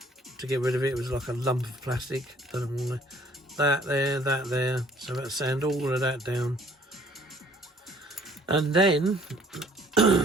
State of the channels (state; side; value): normal; both; correlation 0.58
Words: to get rid of it. It was like a lump of plastic. Don't know why. That there. So I had to sand all of that down. And then,